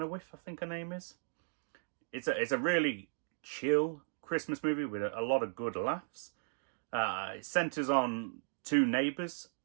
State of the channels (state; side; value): silent; left; digital silence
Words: I think her name is. It's a really chill Christmas movie with a lot of good laughs. It centres on two neighbours,